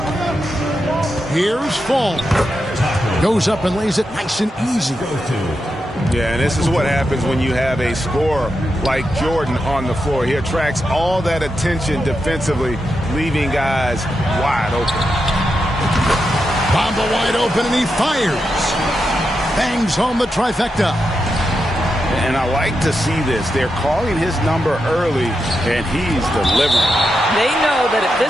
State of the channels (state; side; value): normal; both; correlation 0.87